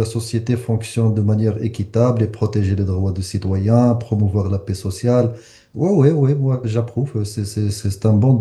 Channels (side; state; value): both; identical; correlation 1.00